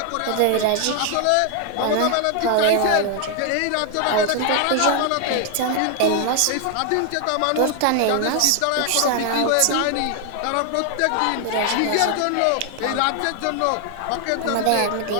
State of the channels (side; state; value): both; different; correlation 0.00